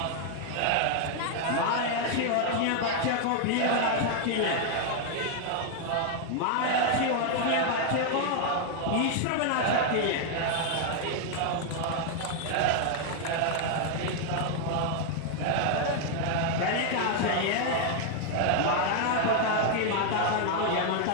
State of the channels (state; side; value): different; both; correlation 0.00